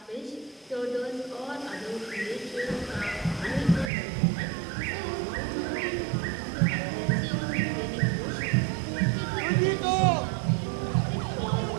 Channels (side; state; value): left; drops out; at 3.9 s